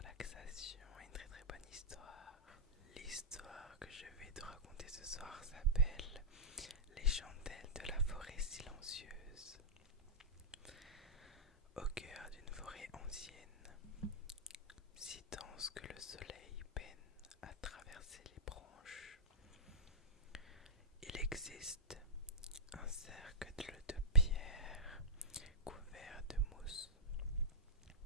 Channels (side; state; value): both; normal; correlation -0.11